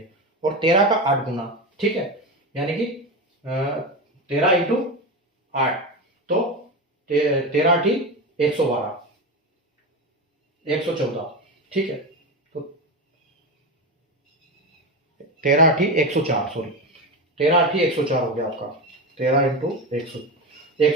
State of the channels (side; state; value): both; normal; correlation 0.19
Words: और 13 का 8 गुना, ठीक है, यानी कि 13 × 8, तो 13 × 8 112, 114, ठीक है। तो 13 × 8 104, सॉरी 13 × 8 104 हो गया आपका, 13 ×